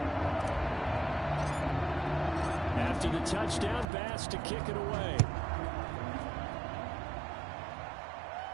After the touchdown, Bass to kick it away.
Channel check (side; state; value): left; drops out; at 3.9 s